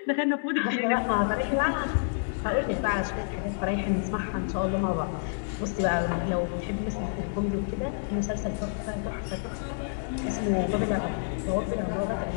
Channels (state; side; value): silent; right; 59 dB below the other